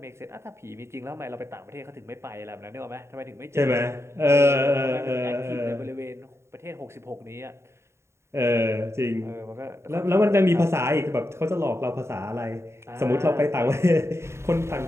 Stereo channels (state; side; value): late; left; 0.13 ms